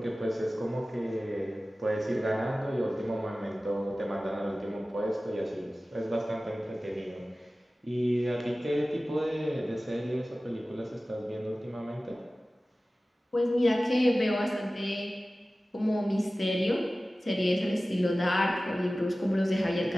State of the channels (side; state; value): both; normal; correlation 0.97